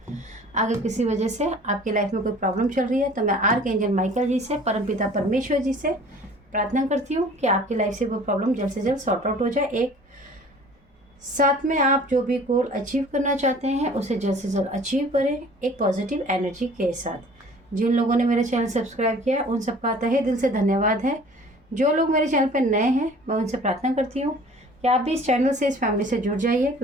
अगर किसी वजह से आपकी लाइफ में कोई प्रॉब्लम चल रही है तो मैं आर्कएंजल माइकल जी से, परमपिता परमेश्वर जी से प्रार्थना करती हूँ कि आपकी लाइफ से वो प्रॉब्लम जल्द से जल्द सॉर्ट आउट हो जाए। एक साथ में आप जो भी गोल अचीव करना चाहते हैं उसे जल्द से जल्द अचीव करें, एक पॉजिटिव एनर्जी के साथ। जिन लोगों ने मेरा चैनल सब्सक्राइब किया उन सबका तहे दिल से धन्यवाद है। जो लोग मेरे चैनल पर नए हैं मैं उनसे प्रार्थना करती हूँ कि आप भी इस चैनल से, इस फैमिली से जुड़ जाइए,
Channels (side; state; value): both; normal; correlation 0.49